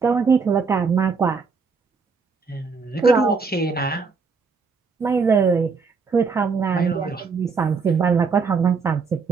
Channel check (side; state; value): left; quieter; 5.0 dB